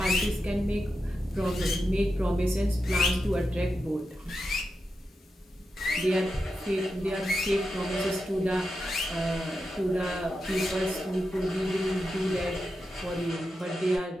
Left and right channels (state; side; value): normal; both; correlation 0.88